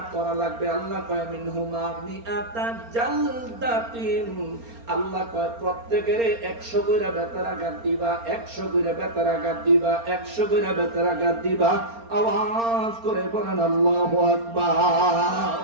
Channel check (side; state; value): left; late; 4.3 ms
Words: করা লাগবে? আল্লাহ কয় মিনহুমা মিআতা জালদাতিন, আল্লাহ কয় প্রত্যেকের 100 কইরা বেতের আঘাত দিবা, 100 কইরা বেতের আঘাত দিবা, 100 কইরা বেতের আঘাত দিবা। আওয়াজ করে বলেন আল্লাহু আকবার।